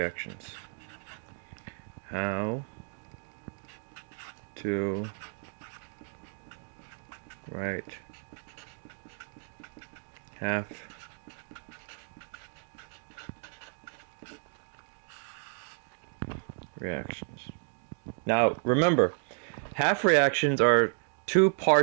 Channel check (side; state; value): left; silent; 56 dB below the other